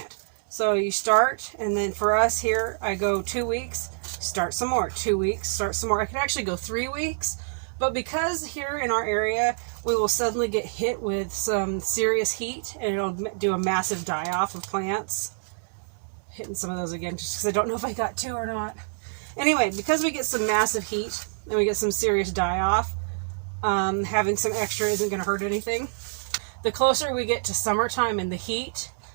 So you start, and then for us here, I go 2 weeks, start some more, 2 weeks, start some more. I could actually go 3 weeks, but because here in our area, we will suddenly get hit with some serious heat, and it'll do a massive die-off of plants. Hitting some of those again, just because I don't know if I got 2 or not. Anyway, because we get some massive heat, and we get some serious die-off, having some extra isn't going to hurt anything. The closer we get to summertime and the heat,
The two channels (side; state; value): left; silent; digital silence